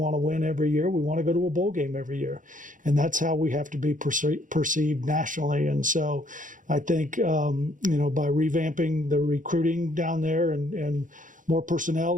to win every year. We want to go to a bowl game every year. And that's how we have to be perceived nationally. And so I think, by revamping the recruiting down there and more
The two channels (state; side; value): late; left; 0.38 ms